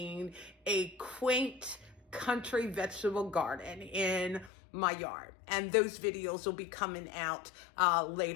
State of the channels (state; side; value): drops out; right; at 4.5 s